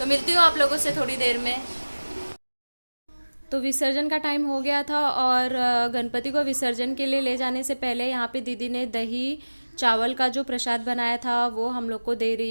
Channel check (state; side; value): inverted; both; correlation -1.00